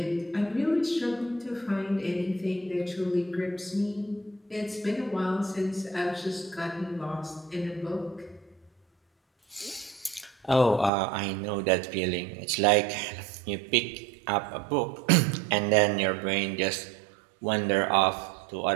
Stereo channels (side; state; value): left; drops out; at 10.9 s